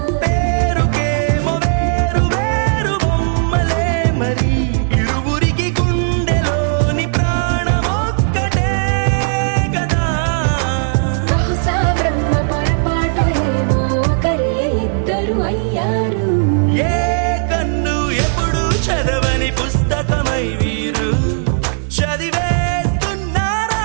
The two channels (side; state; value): left; silent; digital silence